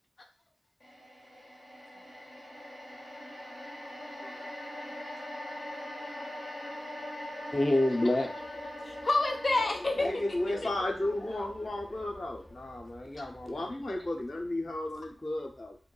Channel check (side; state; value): both; normal; correlation 0.96